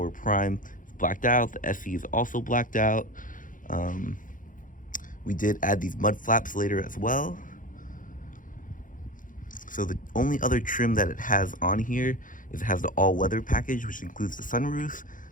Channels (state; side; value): late; right; 0.39 ms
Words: Prime is blacked out, the SE is also blacked out. We did add these mud flaps later as well. So the only other trim that it has on here is it has the all-weather package, which includes the sunroof,